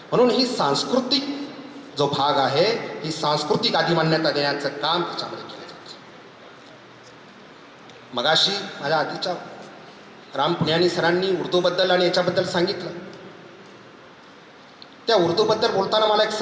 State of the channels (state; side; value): identical; both; correlation 1.00